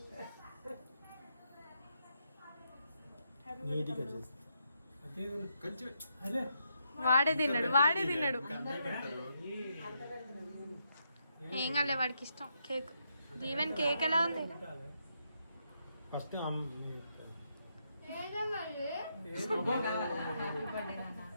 నీట్గా చేస్తా. కొంచెం వాడే తిన్నాడు ఏం కాలే వాడికి ఇష్టం కేక్. దీవెన్ కేక్ ఎలా ఉంది? ఫస్ట్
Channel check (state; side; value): inverted; both; correlation -0.80